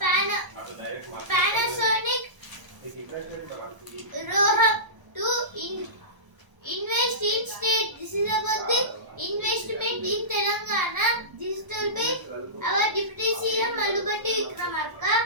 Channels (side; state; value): left; late; 1.0 ms